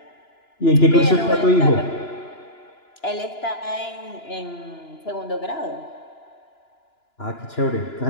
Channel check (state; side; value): late; right; 2.9 ms